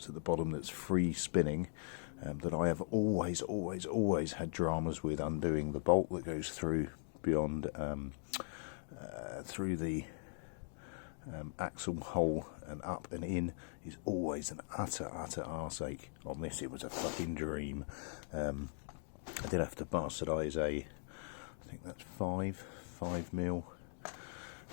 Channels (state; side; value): silent; right; digital silence